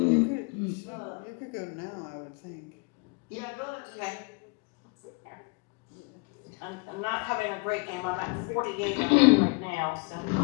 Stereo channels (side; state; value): right; quieter; 31.5 dB